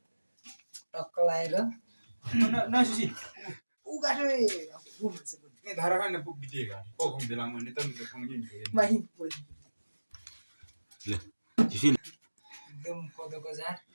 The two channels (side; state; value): both; inverted; correlation -1.00